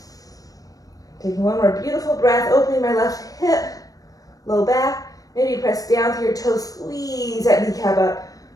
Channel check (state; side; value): late; right; 0.17 ms